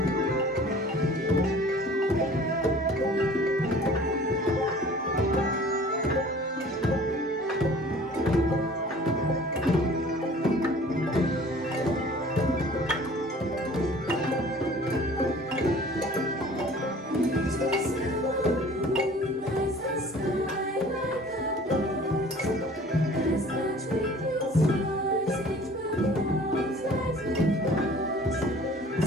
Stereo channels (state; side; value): normal; both; correlation 0.48